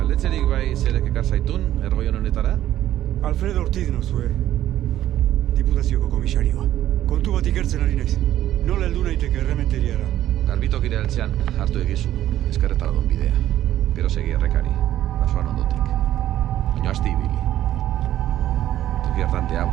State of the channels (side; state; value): left; quieter; 12.7 dB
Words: Jakitzerik bai zerek ekar zaitun, ergoion honetara? Alfredo Ortiz nozue. Diputazioko komisarioa. Kontu bat ikertzen ari naiz. Nola heldu naiteke errementeriara? Garbitokire altzean hartu egizu, eskerretara don bidea. Gero segi errekari, basoan ondotik. Baina asti ibili. Toki hartan